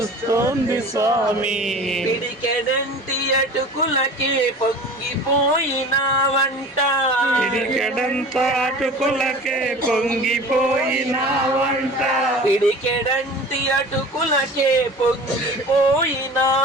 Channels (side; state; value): both; normal; correlation 0.39